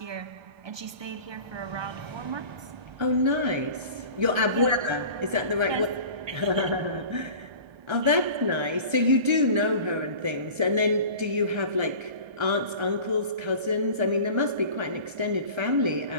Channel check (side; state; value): left; late; 1.3 ms